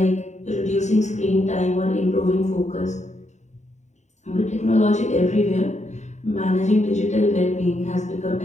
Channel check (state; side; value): late; right; 0.34 ms